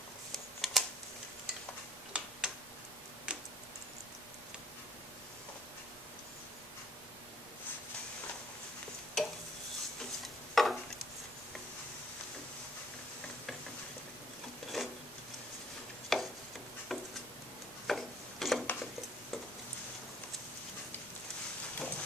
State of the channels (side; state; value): both; normal; correlation 0.58